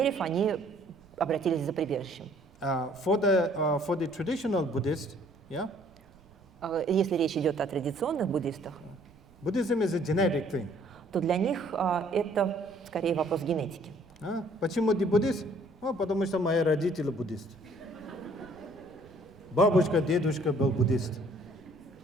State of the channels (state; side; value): noise; right; rumble, 27 dB below the sound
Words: они обратились за прибежищем. For the traditional Buddhist, Если речь идет о традиционных буддистах, Buddhism is a genetic thing. то для них это скорее вопрос генетики. Почему ты буддист? Потому что мои родители буддисты. Бабушка, дедушка был буддист.